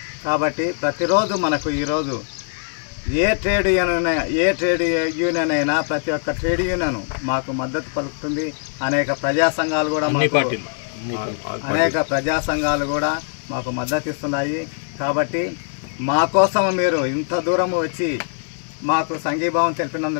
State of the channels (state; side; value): silent; right; 64 dB below the other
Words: కాబట్టి ప్రతిరోజు మనకు ఈరోజు ఏ ట్రేడ్ యూనియన్ అయినా ప్రతి ఒక్క ట్రేడ్ యూనియన్ మాకు మద్దతు పలుకుతుంది. అనేక ప్రజా సంఘాలు కూడా మాకు మద్దతు ఇస్తున్నాయి. కాబట్టి మా కోసం మీరు ఇంత దూరం వచ్చి మాకు సంఘీభావం